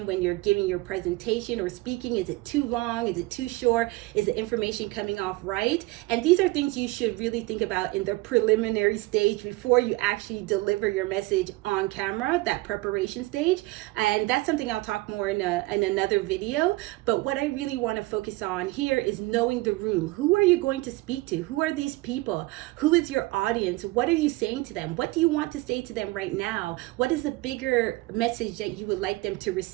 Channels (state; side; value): quieter; left; 21.1 dB